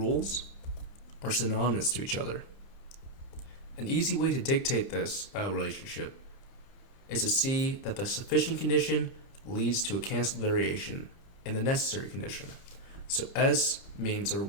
are synonymous to each other. An easy way to dictate this relationship is to see that the sufficient condition leads to a canceled variation in the necessary condition. So S means there will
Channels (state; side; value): late; right; 30 ms